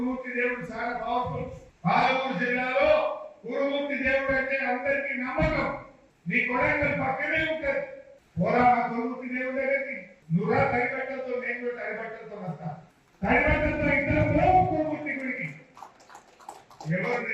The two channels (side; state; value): both; identical; correlation 1.00